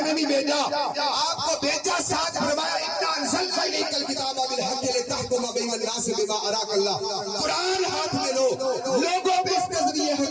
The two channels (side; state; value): both; identical; correlation 1.00